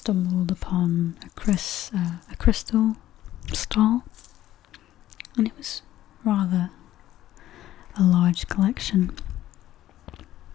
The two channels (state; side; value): quieter; right; 13.6 dB